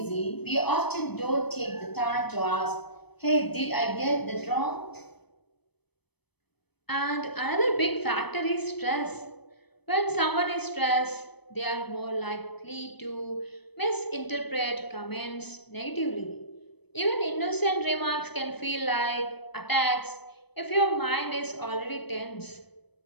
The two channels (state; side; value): late; right; 0.98 ms